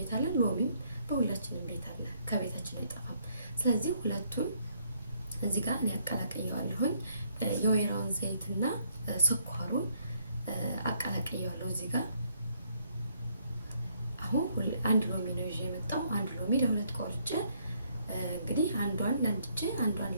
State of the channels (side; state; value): both; inverted; correlation -0.69